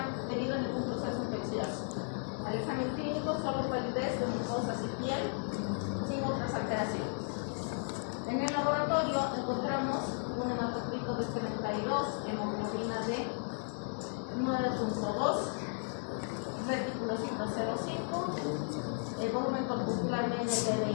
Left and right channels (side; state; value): right; silent; 55 dB below the other